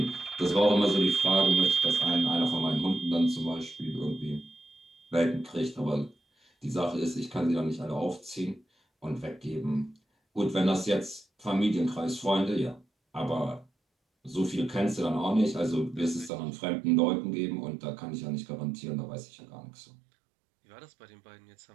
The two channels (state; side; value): drops out; left; at 16.3 s